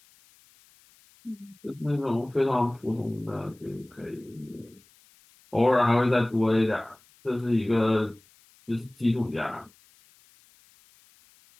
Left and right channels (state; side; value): noise; left; hiss, 30 dB below the sound